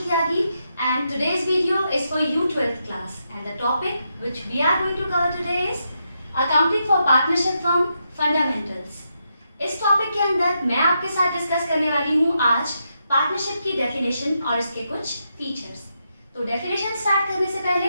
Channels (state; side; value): inverted; both; correlation -0.82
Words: Tyagi and today's video is for you 12th class and the topic which we are going to cover today is Accounting for Partnership Firm Fundamentals. इस टॉपिक के अंदर मैं आपके साथ डिस्कस करने वाली हूँ आज पार्टनरशिप की डेफिनेशन और इसके कुछ फीचर्स। तो डेफिनेशन स्टार्ट करने से